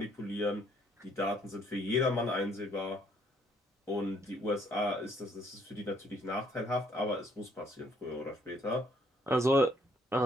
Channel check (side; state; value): both; normal; correlation 0.66